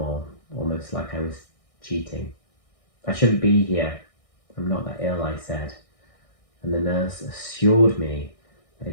almost like I was cheating. I shouldn't be here. I'm not that ill, I said. And the nurse assured me that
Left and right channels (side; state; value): right; late; 1.6 ms